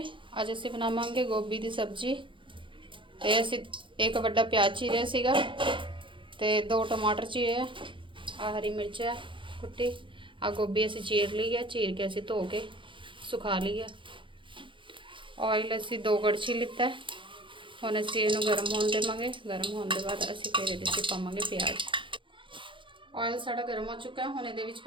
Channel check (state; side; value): late; left; 0.24 ms